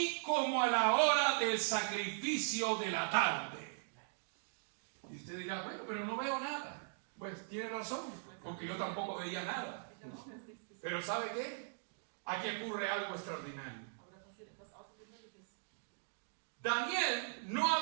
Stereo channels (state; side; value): silent; left; digital silence